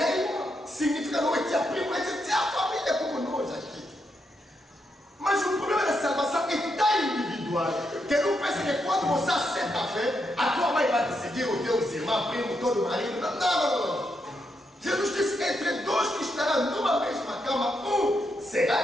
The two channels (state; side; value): normal; both; correlation 0.81